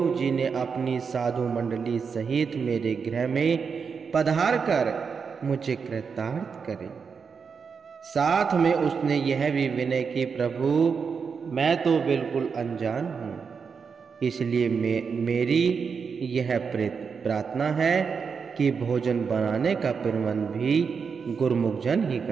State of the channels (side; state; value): left; quieter; 5.8 dB